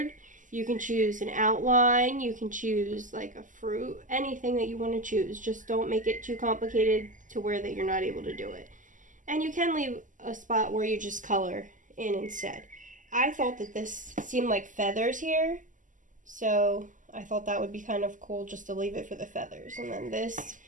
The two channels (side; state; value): left; late; 0.37 ms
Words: you can choose an outline, you can choose like a fruit, anything that you want to choose. Just don't make it too complicated to where that you're not able to do it. And you can leave a spot where you just color in instead. I thought that this seemed like feathers here, so I thought that would be kind of cool just to leave it for the feathers. And then this